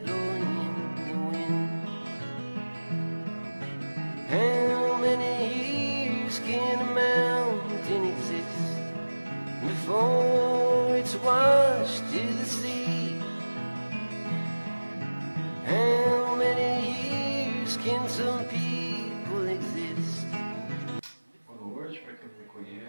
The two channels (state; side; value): inverted; both; correlation -1.00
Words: in the wind. How many years can a mountain exist before it's washed to the sea? How many years can some people exist? Boa noite, para quem não me